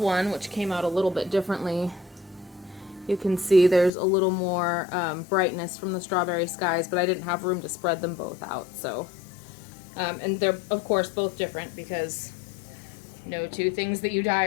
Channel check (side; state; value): right; drops out; at 3.9 s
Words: which came out a little bit differently, you can see there's a little more brightness from the strawberry skies, but I didn't have room to spread them both out. So, and they're of course both different because no two things that you dye